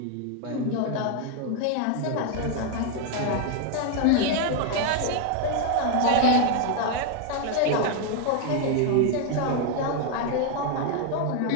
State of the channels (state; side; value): different; both; correlation 0.01